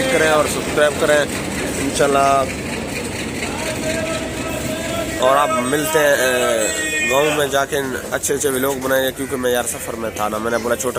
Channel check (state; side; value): noise; left; hum, 26 dB below the sound